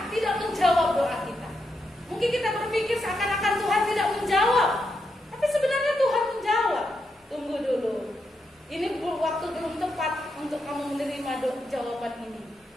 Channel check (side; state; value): both; normal; correlation 0.83